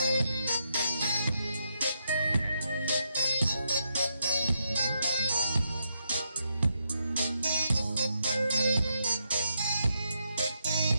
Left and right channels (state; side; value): inverted; both; correlation -0.80